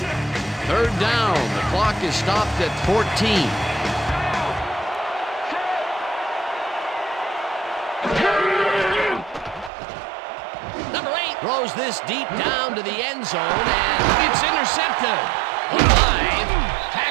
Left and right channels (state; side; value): drops out; left; at 9.7 s